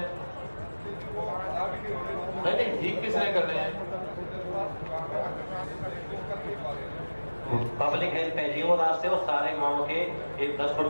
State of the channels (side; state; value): both; inverted; correlation -1.00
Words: नहीं, ठीक किसने करने हैं? पब्लिक हेल्थ है जी, वो रास्ते वो सारे गाँव के 10 फुट